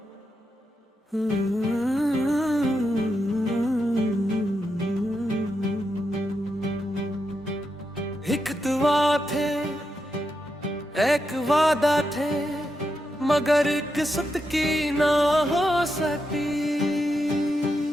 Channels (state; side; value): normal; both; correlation 0.85